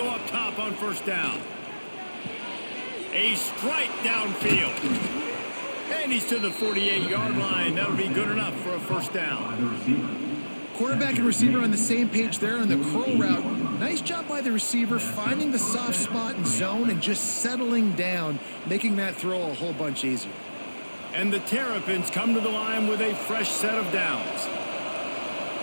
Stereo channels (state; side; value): inverted; both; correlation -1.00